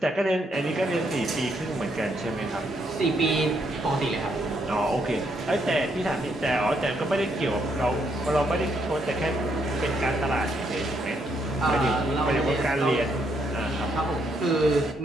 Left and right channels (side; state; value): both; normal; correlation 0.74